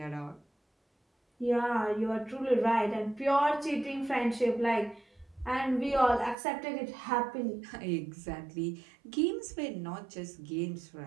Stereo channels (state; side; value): drops out; left; at 6.4 s